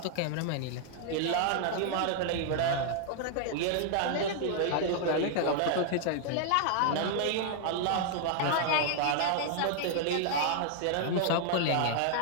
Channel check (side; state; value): both; different; correlation 0.00